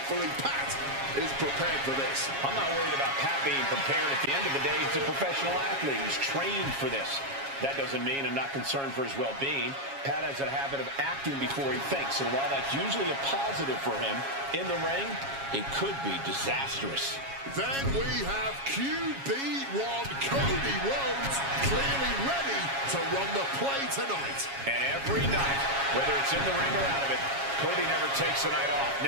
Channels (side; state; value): left; late; 7.3 ms